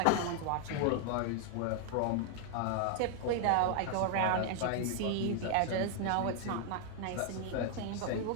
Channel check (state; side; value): different; both; correlation 0.00